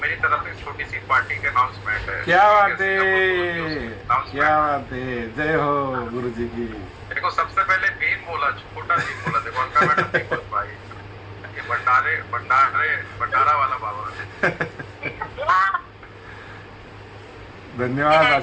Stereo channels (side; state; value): both; identical; correlation 1.00